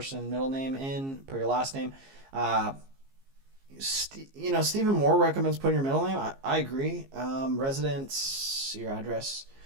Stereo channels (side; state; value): left; late; 15 ms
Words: and middle name in, put your last name. Steven Moor recommends putting your middle name. I agree. Residence, your address.